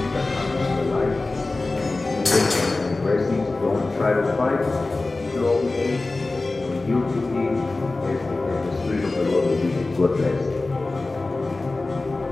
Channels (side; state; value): right; quieter; 3.3 dB